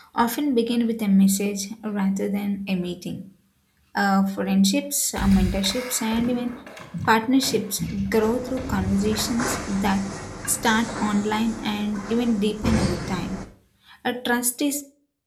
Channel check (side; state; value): both; identical; correlation 1.00